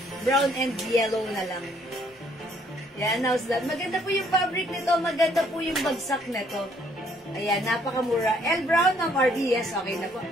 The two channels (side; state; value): both; normal; correlation 0.65